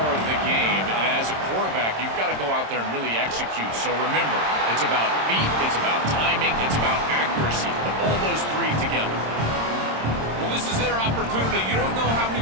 of the game. And as a quarterback, you've got to go out there and really execute. So remember, it's about feet, it's about timing, it's about accuracy. Put all those 3 together. Well, this is their opportunity. You don't know how many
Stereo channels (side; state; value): left; late; 26 ms